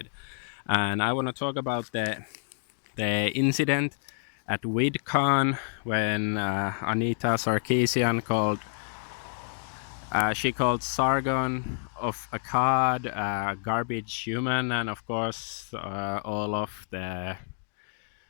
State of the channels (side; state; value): right; silent; digital silence